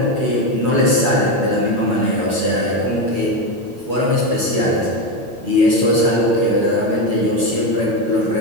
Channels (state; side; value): late; left; 8.7 ms